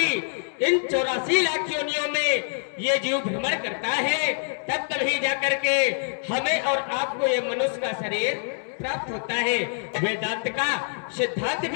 इन 84 लाख योनियों में ये जीव भ्रमण करता है, तब कभी जाकर के हमें और आपको ये मनुष्य का शरीर प्राप्त होता है। वेदांत का सिद्धांत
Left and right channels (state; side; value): silent; right; digital silence